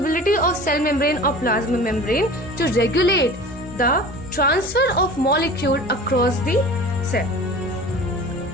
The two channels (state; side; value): normal; both; correlation 0.39